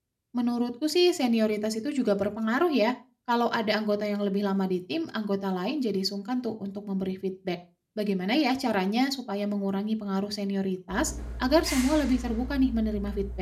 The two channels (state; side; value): identical; both; correlation 1.00